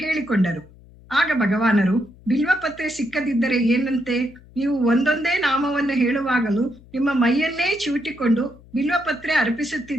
ಹೇಳಿಕೊಂಡರು. ಆಗ ಭಗವಾನರು, ಬಿಲ್ವ ಪತ್ರೆ ಸಿಕ್ಕದಿದ್ದರೆ ಏನಂತೆ, ನೀವು ಒಂದೊಂದೇ ನಾಮವನ್ನು ಹೇಳುವಾಗಲೂ ನಿಮ್ಮ ಮೈಯನ್ನೇ ಚಿವುಟಿಕೊಂಡು ಬಿಲ್ವ ಪತ್ರೆ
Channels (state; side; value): noise; left; hum, 24 dB below the sound